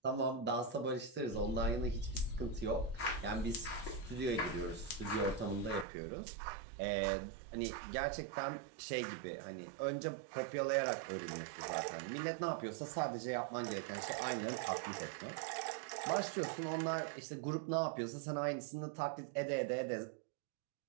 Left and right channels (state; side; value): drops out; left; at 5.9 s